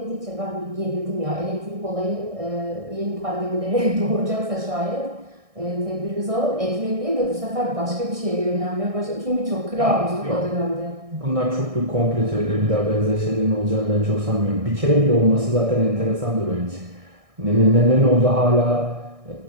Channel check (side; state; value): left; late; 1.6 ms